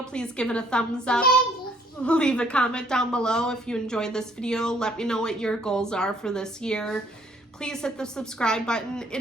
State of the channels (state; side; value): normal; both; correlation 0.63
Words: please give it a thumbs up. Leave a comment down below if you enjoyed this video. Let me know what your goals are for this year. Please hit the subscribe button.